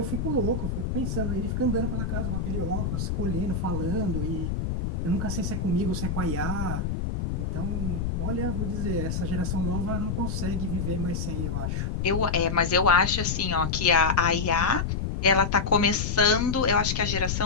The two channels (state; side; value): noise; left; rumble, 2 dB below the sound